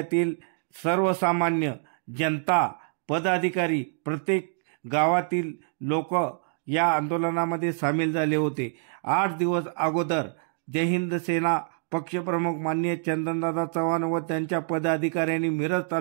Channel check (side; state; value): left; silent; digital silence